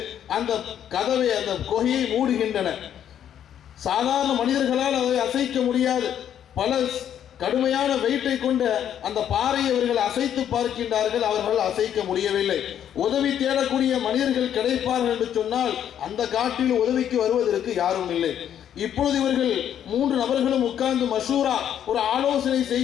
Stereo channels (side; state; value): right; quieter; 9.8 dB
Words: அந்த கதவை, அந்த குகையை மூடுகின்றன. சாதாரண மனிதர்களால் அதை அசைக்க முடியாது. பல கடுமையான வெயிட்டை கொண்ட அந்த பாறையை அவர்கள் அசைத்து பார்க்கின்றார்கள். அவர்கள் அசைக்க முடியவில்லை. உதவி தேடக்கூடிய மனிதர்கள் கிடைப்பார்கள் என்று சொன்னால் அந்த காட்டில் உதவிக்கு வருவதற்கு யாரும் இல்லை. இப்பொழுது இவர்கள் 3 நபர்களும் உட்கார்ந்து மஷூரா, ஒரு ஆலோசனை